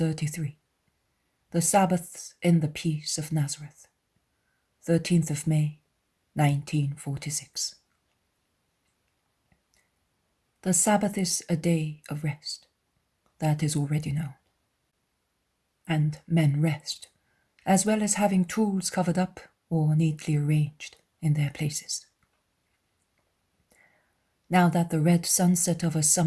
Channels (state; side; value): identical; both; correlation 1.00